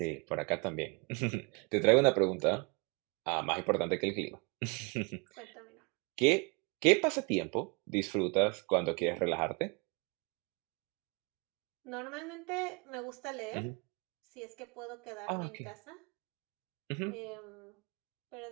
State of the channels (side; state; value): left; quieter; 30.2 dB